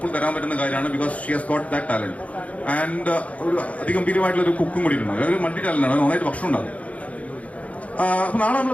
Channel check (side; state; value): right; late; 0.067 ms